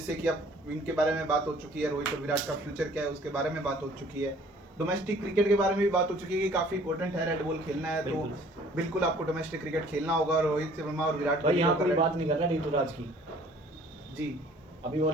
कि अब इनके बारे में बात हो चुकी है, रोहित और विराट का फ्यूचर क्या है उसके बारे में बात हो चुकी है, डोमेस्टिक क्रिकेट के बारे में भी बात हो चुकी है कि काफी इंपॉर्टेंट है रेड बॉल खेलना है, तो बिल्कुल आपको डोमेस्टिक क्रिकेट खेलना होगा। रोहित शर्मा और विराट भाई यहाँ कोई कोहली बात नहीं कर रहा ऋतुराज की, जी, अभी वो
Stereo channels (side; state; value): both; normal; correlation 0.54